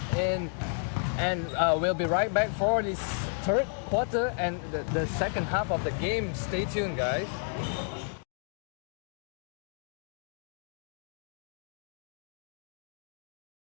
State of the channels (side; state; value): right; silent; 56 dB below the other